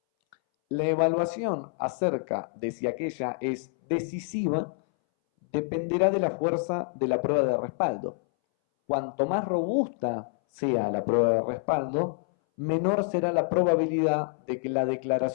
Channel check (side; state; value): right; silent; 60 dB below the other